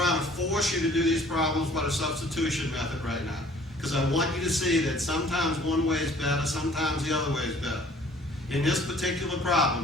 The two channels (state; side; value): normal; both; correlation 0.54